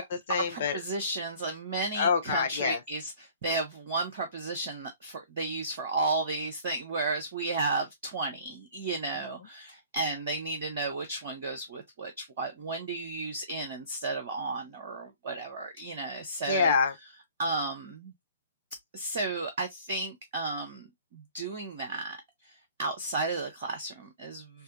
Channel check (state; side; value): inverted; both; correlation -0.50